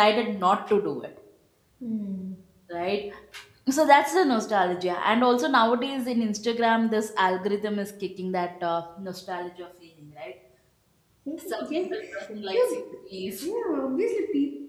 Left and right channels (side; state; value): both; identical; correlation 1.00